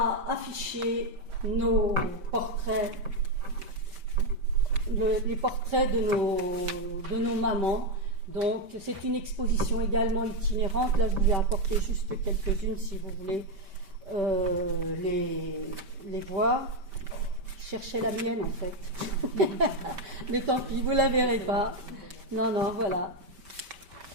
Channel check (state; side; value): late; left; 5.1 ms